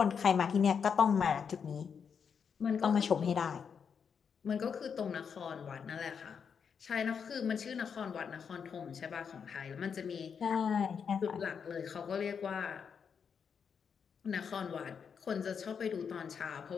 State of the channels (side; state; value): right; quieter; 6.7 dB